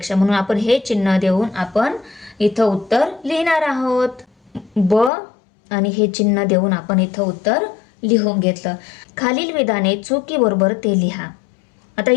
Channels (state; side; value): drops out; right; at 5.1 s